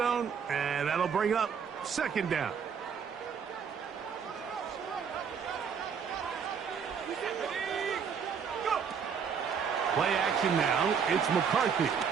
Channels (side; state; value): left; quieter; 6.8 dB